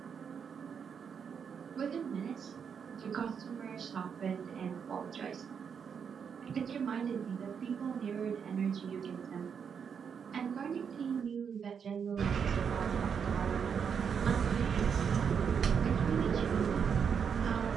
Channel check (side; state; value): left; quieter; 6.9 dB